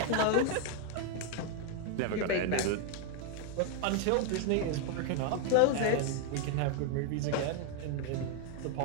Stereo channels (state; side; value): different; both; correlation 0.00